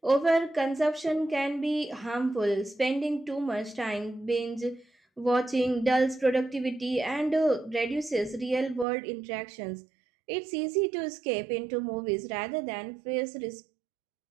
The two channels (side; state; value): left; drops out; at 8.8 s